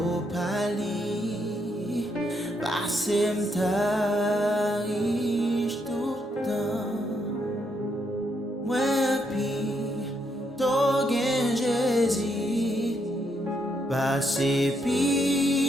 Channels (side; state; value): both; normal; correlation 0.76